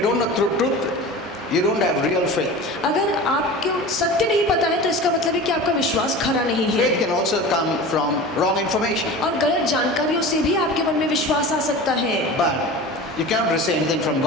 you don't know truth, you don't have real faith. अगर आपको सत्य नहीं पता है तो इसका मतलब है कि आपका विश्वास खरा नहीं है। Faith can also come from wrong information. और गलत जानकारियों से भी आपके मन में विश्वास आ सकता है। But you cannot receive anything from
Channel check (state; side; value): normal; both; correlation 0.34